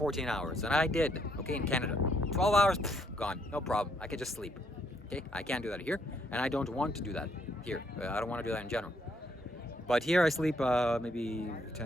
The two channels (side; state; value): both; normal; correlation 0.71